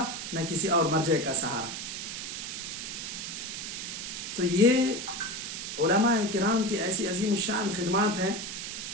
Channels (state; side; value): noise; right; hiss, 6 dB below the sound